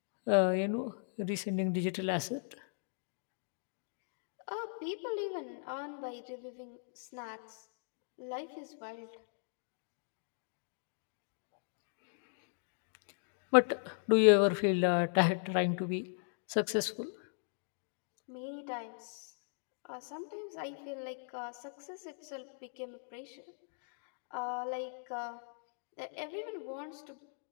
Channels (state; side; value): silent; right; digital silence